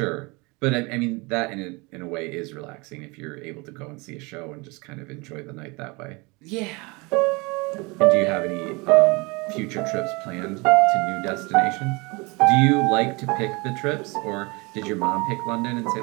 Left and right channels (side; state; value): left; quieter; 26.9 dB